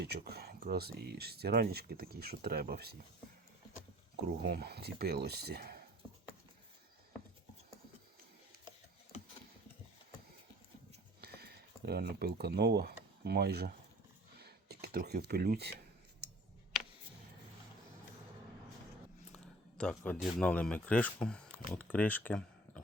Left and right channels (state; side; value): normal; both; correlation 0.49